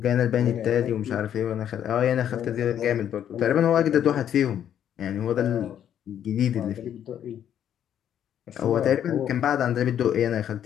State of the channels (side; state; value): right; quieter; 9.9 dB